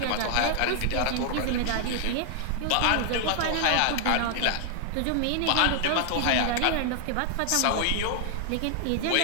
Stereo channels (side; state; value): both; different; correlation -0.01